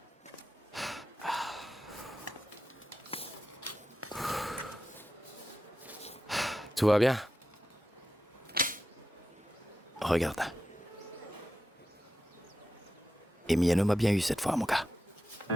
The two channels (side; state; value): both; normal; correlation 0.89